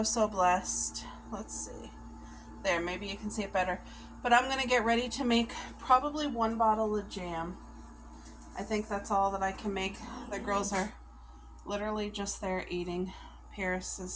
blessed. Let's see. There, maybe you can see it better. But I'm going to get ready to make probably 1 bottle of jam. I think that's all that I can make. The girls are literally just there eating. Paris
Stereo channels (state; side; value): identical; both; correlation 1.00